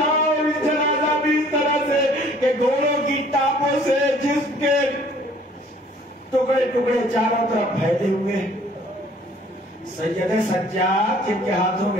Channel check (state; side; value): normal; both; correlation 0.56